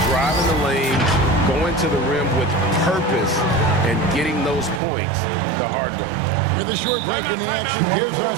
driving the lane, going to the rim with purpose, and getting those points the hard way. With a short break in the action, gives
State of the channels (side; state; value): left; drops out; at 4.8 s